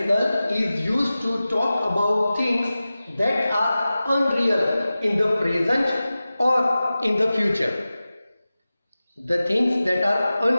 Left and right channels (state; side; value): inverted; both; correlation -0.96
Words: is used to talk about things that are unreal in the present or in the future. The things that are